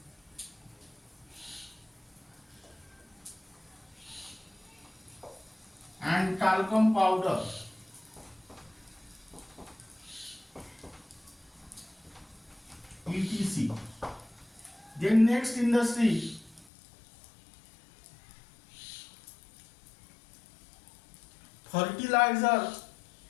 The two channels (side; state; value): right; drops out; at 16.7 s